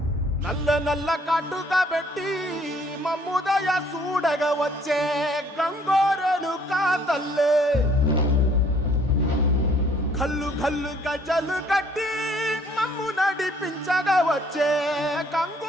నల్ల నల్ల కాటుగా పెట్టి మమ్ముదయ చూడగా వచ్చే గంగోరెను కా తల్లి, కల్లు కల్లు గజలు కట్టి మమ్ము నడిపించగా వచ్చే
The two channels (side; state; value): both; normal; correlation 0.61